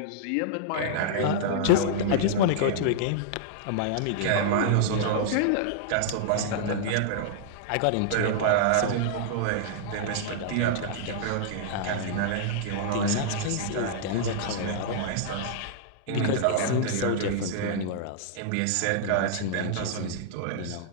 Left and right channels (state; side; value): different; both; correlation -0.01